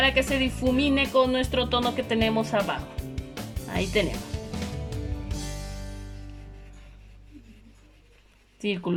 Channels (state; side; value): identical; both; correlation 1.00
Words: que se difumine con nuestro tono que tenemos abajo. Ahí tenemos.